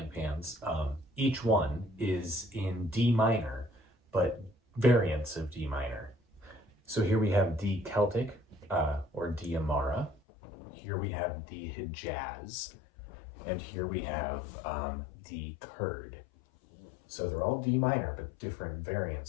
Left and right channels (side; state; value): right; drops out; at 10.2 s